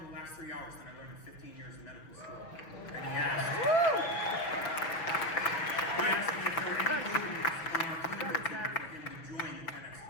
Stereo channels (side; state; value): right; late; 6.0 ms